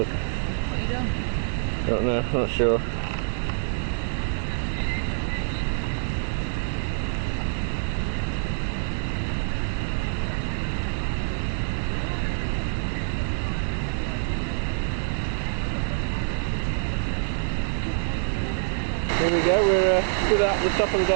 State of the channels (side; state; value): left; silent; 61 dB below the other